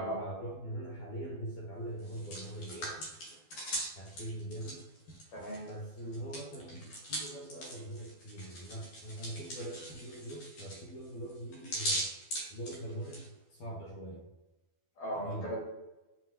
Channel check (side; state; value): right; late; 12 ms